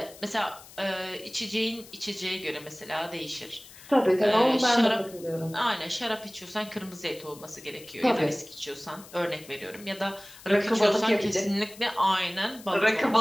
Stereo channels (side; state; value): left; noise; hiss, 19 dB below the sound